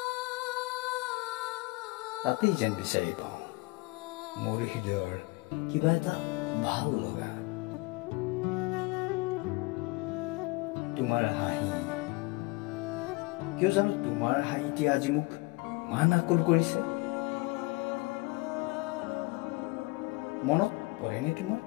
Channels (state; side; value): quieter; right; 24.7 dB